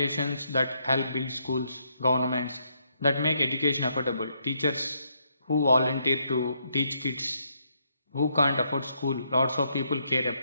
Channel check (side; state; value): both; inverted; correlation -0.75